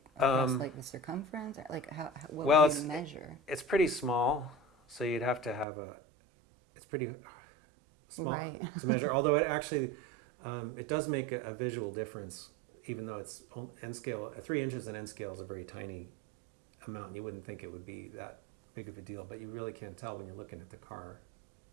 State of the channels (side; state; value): left; drops out; at 5.7 s